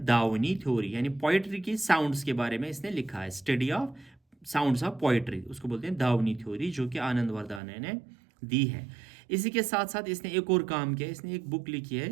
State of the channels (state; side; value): drops out; left; at 7.6 s